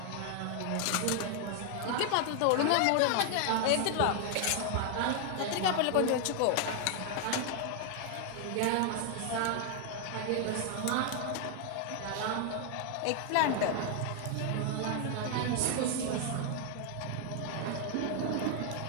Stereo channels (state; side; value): different; both; correlation 0.00